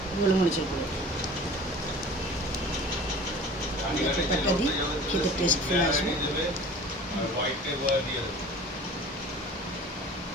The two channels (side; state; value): both; normal; correlation 0.43